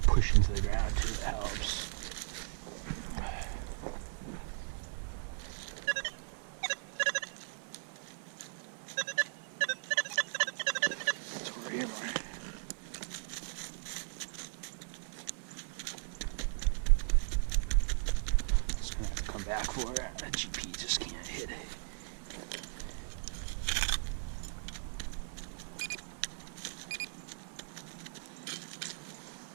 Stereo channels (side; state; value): left; silent; 53 dB below the other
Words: push into the ground too, that helps. Back for it. That GP just can't hit it.